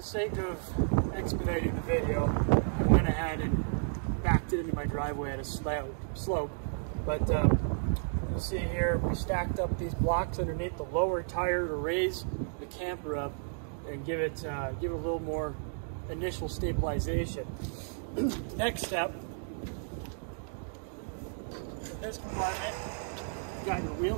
the sake of expediting the video, I went ahead and backed it into my driveway at a slope. But you'll see here, we stacked up these blocks underneath the lower tire to raise the camper up and give it a little more initial stabilization. Next step, in this compartment, you got your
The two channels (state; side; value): silent; left; digital silence